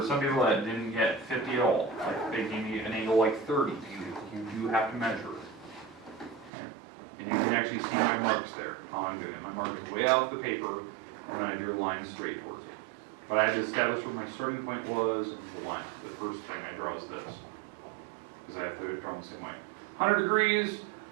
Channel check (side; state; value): left; drops out; at 6.5 s